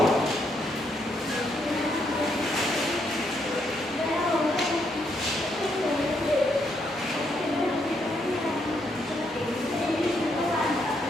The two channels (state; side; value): normal; both; correlation 0.76